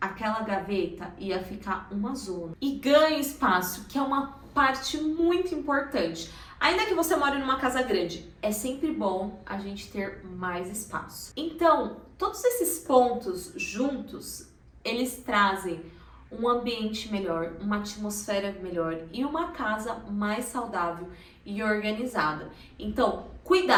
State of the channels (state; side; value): identical; both; correlation 1.00